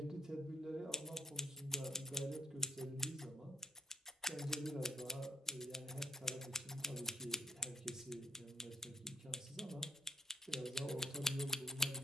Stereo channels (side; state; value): both; normal; correlation 0.71